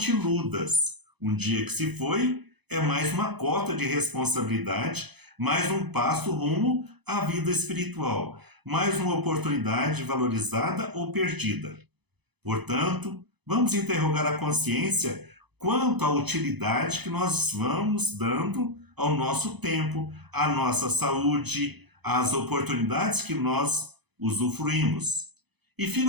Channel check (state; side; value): late; left; 0.99 ms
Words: iludas, um dia que se foi é mais uma cota de responsabilidade, mais um passo rumo à vida espiritual, mais uma oportunidade valorizada ou perdida. Portanto, vamos interrogar a consciência quanto à utilidade que nós vamos dando ao nosso tempo, à nossa saúde, às oportunidades que nós usufruímos. E